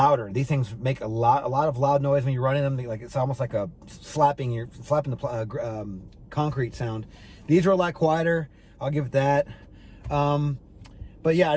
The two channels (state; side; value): identical; both; correlation 1.00